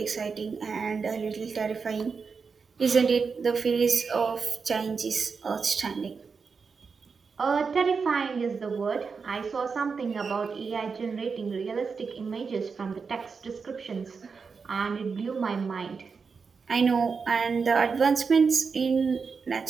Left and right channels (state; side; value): quieter; left; 5.2 dB